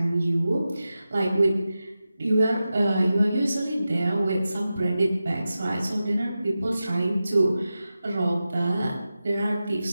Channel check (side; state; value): both; inverted; correlation -0.93